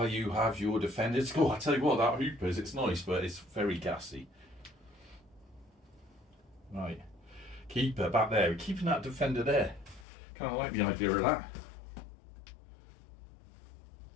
you have your defenders. Oh, I tell you what, that hoopers, it's nice, but it's very gassy. Right. Keeper back there. We're keeping that defender there. Kind of like the idea of that.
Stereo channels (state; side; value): drops out; right; at 10.1 s